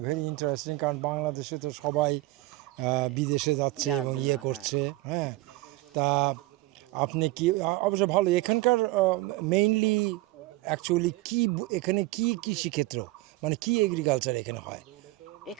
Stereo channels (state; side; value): quieter; left; 19.4 dB